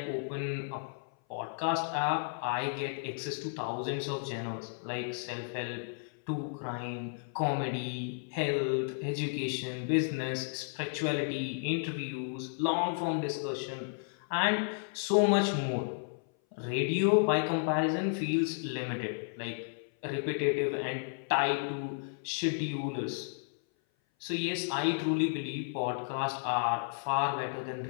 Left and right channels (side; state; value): right; silent; 56 dB below the other